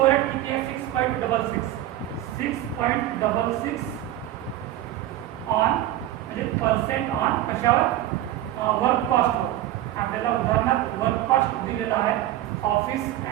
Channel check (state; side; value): quieter; left; 13.7 dB